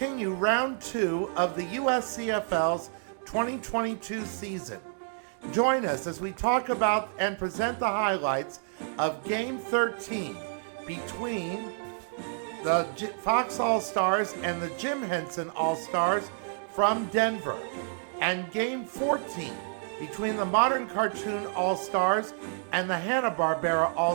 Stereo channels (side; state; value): left; silent; digital silence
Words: round 2 of the USCFL's 2022 season. Join us as we talk about and present the highlights of Game 13 between the Fox All-Stars and the Jim Henson All-Stars from Denver, and Game 14 between the Modern Cartoon All-Stars and the Hanna-Barbera